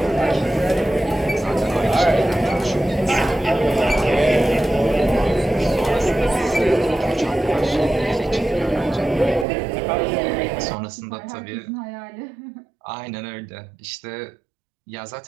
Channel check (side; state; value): left; drops out; at 9.5 s